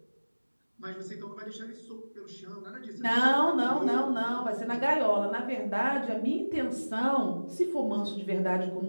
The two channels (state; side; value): inverted; both; correlation -1.00